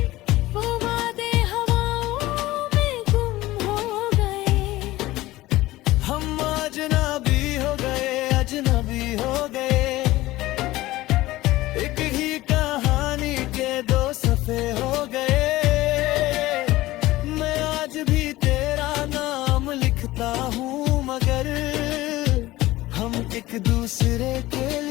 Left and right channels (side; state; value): right; quieter; 17.6 dB